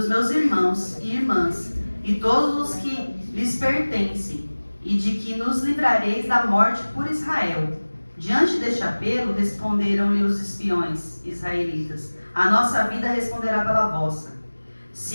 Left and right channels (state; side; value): inverted; both; correlation -1.00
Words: meus irmãos e irmãs, e todos os que lhes pertencem, e de que nos livrareis da morte por Israel. Diante deste apelo, responderam-lhe os espiões israelitas: a nossa vida responderá pela vossa.